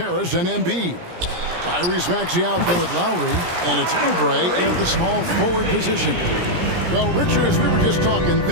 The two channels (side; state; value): left; late; 17 ms